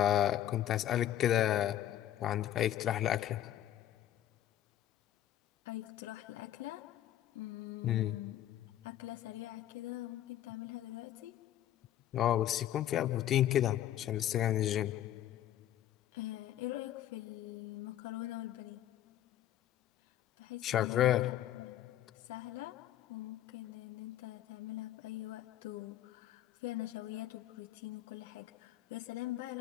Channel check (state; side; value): quieter; right; 12.1 dB